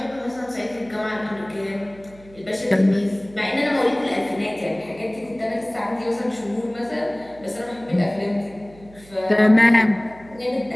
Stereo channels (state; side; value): noise; right; hum, 23 dB below the sound